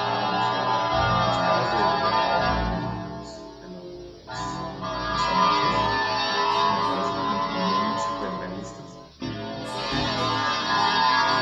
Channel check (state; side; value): identical; both; correlation 1.00